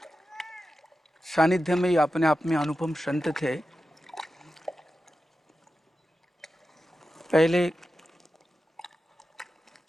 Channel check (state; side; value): normal; both; correlation 0.92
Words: सानिध्य में ही अपने आप में अनुपम संत थे। पहले